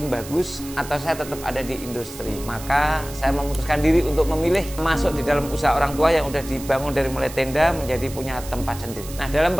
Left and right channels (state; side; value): noise; right; hiss, 14 dB below the sound